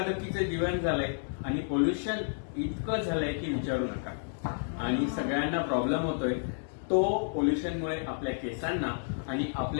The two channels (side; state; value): right; silent; digital silence